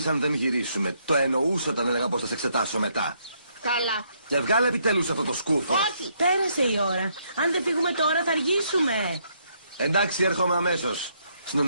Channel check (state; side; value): inverted; both; correlation -0.72